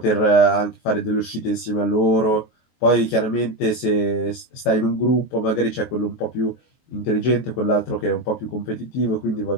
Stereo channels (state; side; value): late; right; 23 ms